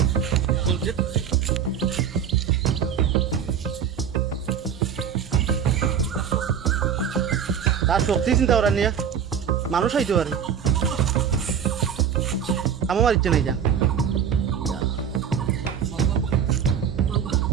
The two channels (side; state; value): left; quieter; 8.0 dB